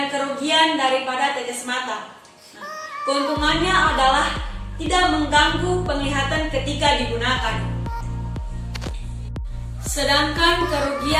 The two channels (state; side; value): identical; both; correlation 1.00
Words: kerugian daripada tetes mata. Keuntungannya adalah tidak mengganggu penglihatan ketika digunakan. Sedangkan